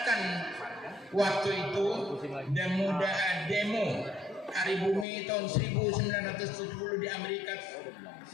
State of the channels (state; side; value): drops out; right; at 5.1 s